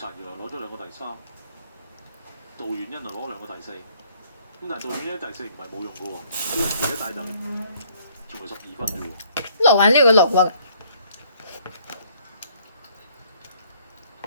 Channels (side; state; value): both; inverted; correlation -0.62